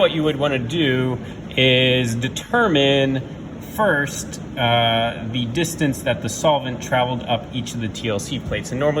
you would want to do is determine first the distance that the solvent traveled up each of the TLC plates. And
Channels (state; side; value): identical; both; correlation 1.00